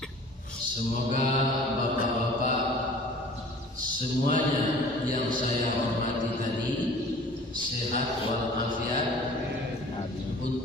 Semoga bapak-bapak semuanya yang saya hormati tadi sehat walafiat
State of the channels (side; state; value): both; normal; correlation 0.47